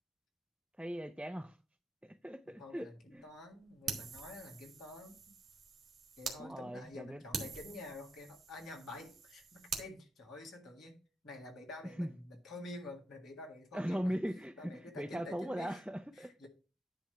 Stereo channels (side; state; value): both; normal; correlation 0.86